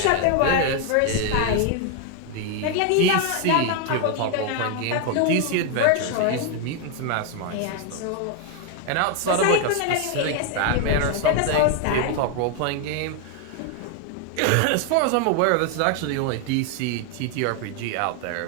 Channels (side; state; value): both; different; correlation 0.01